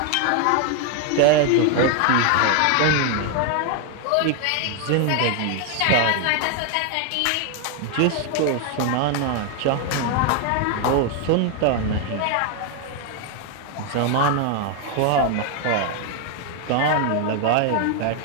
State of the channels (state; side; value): different; both; correlation 0.01